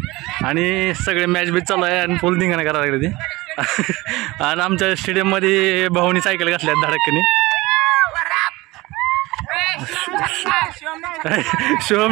आणि सगळे मॅच बीच चालू आहे आणि फुल धिंगाणा करायला लागले ते. आणि आमच्या स्टेडियममध्ये भाऊनी सायकल घातल्या धडकनी.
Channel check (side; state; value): left; quieter; 21.0 dB